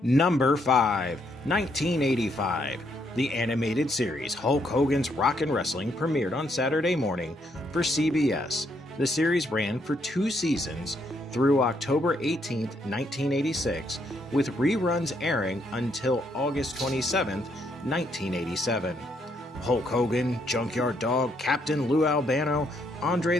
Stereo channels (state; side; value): normal; both; correlation 0.73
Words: Number 5, 1985. The animated series Hulk Hogan's Rockin' Wrestling premiered on Saturday morning for CBS. The series ran for 2 seasons through October 18, 1986, with reruns airing until August 27, 1987. Hulk Hogan, Junkyard Dog, Captain Lou Albano, Andre